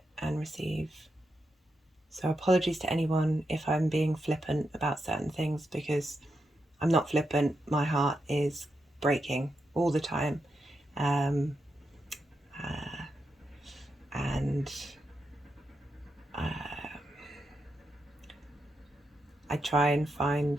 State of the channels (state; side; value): normal; both; correlation 0.85